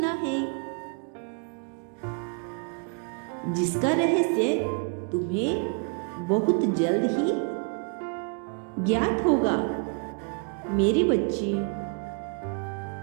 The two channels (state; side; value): quieter; left; 38.0 dB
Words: है, जिसका रहस्य तुम्हें बहुत जल्द ही ज्ञात होगा। मेरे बच्चे,